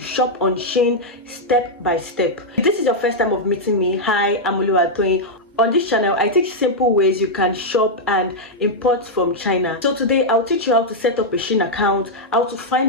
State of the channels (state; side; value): normal; both; correlation -0.03